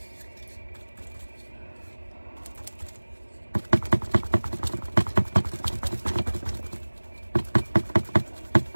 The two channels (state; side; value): inverted; both; correlation -1.00